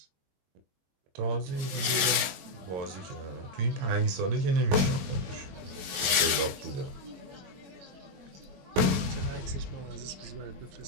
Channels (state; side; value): late; left; 21 ms